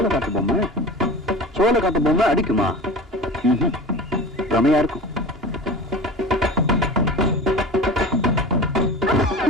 சோள காட்டு பொம்மை அடிக்குமா? ரமையா இருக்கும்.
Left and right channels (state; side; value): normal; both; correlation 0.34